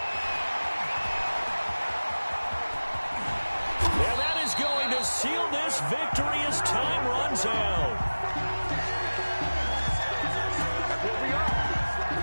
And that is going to seal this victory as time runs out.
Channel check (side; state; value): both; inverted; correlation -1.00